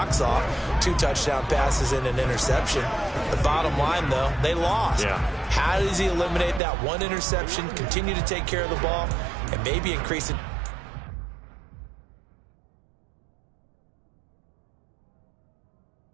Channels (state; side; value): drops out; left; at 6.6 s